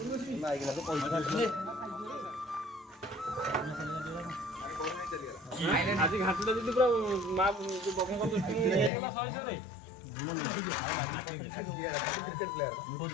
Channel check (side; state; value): right; drops out; at 8.9 s